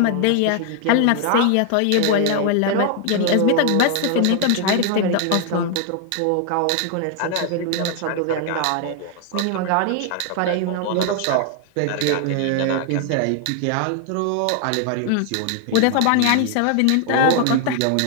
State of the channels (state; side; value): different; both; correlation 0.00